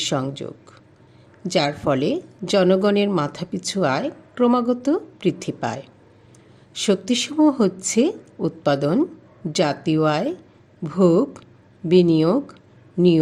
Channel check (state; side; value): identical; both; correlation 1.00